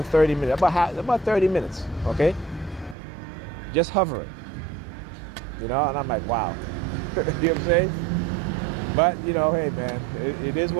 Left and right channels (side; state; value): left; drops out; at 3.0 s